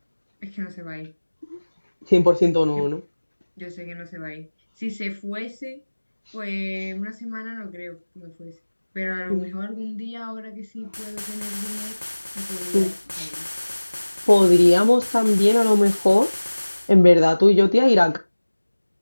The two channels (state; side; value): inverted; both; correlation -1.00